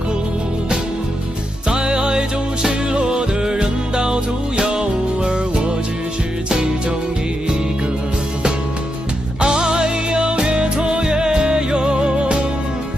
在爱中失落的人到处有，而我只是其中一个。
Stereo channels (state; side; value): normal; both; correlation 0.84